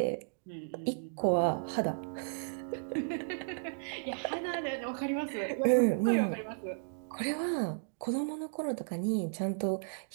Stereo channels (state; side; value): silent; left; digital silence